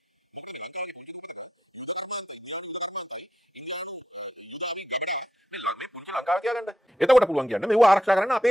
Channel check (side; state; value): both; normal; correlation 0.82